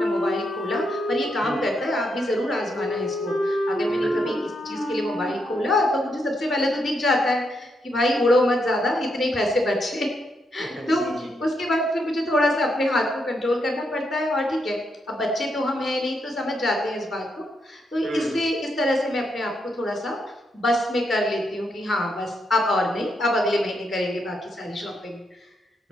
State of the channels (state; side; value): normal; both; correlation 0.80